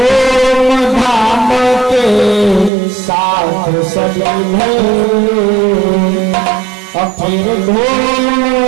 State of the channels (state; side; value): drops out; left; at 2.7 s